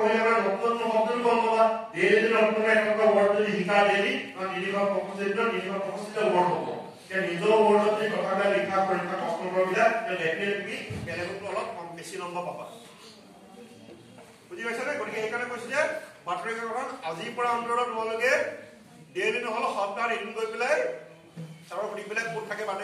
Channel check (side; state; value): both; identical; correlation 1.00